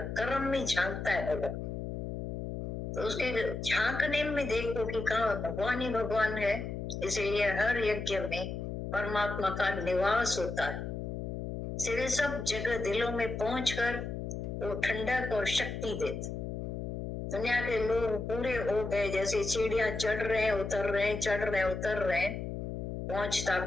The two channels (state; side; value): noise; left; hum, 5 dB below the sound